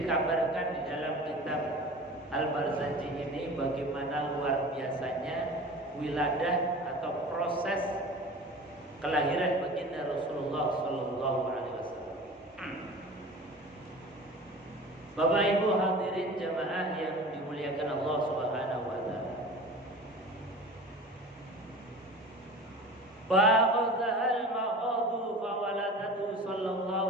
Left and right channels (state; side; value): normal; both; correlation 0.38